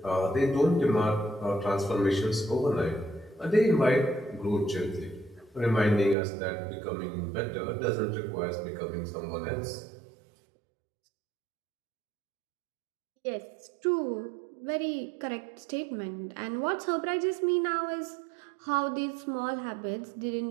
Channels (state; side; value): drops out; left; at 6.2 s